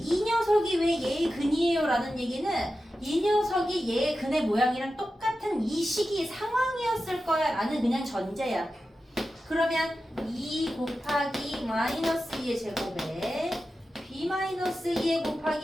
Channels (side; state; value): both; normal; correlation 0.92